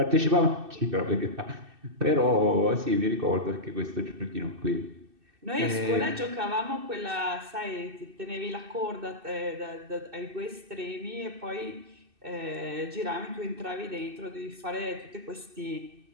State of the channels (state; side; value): late; left; 2.6 ms